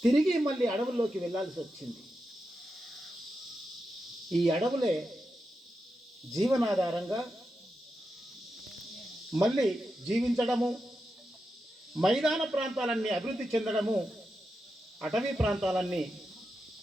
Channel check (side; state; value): both; normal; correlation 0.88